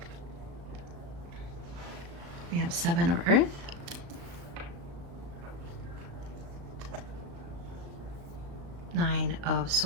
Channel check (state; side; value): late; left; 35 ms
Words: We have 7 of Earth. Nine of